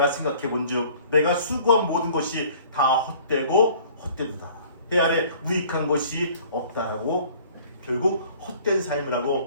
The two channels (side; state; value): both; inverted; correlation -0.52